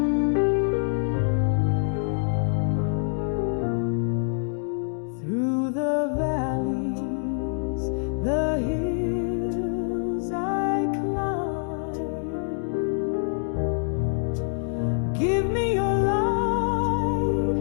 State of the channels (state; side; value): silent; right; 61 dB below the other